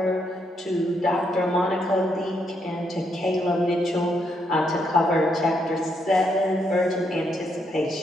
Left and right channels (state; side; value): normal; both; correlation 0.77